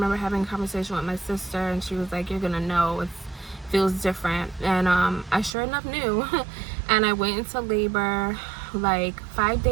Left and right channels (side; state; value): left; drops out; at 5.6 s